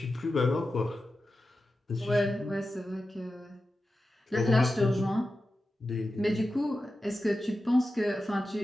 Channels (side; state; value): both; normal; correlation 0.92